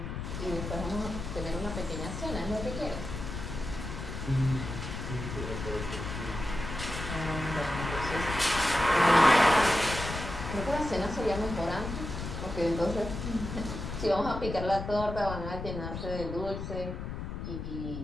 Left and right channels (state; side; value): noise; left; rumble, 6 dB below the sound